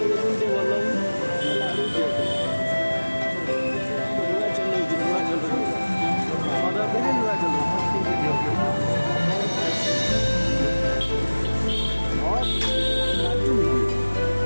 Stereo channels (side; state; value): both; inverted; correlation -1.00